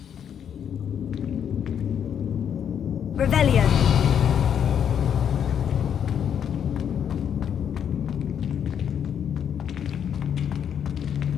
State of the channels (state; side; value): quieter; right; 8.5 dB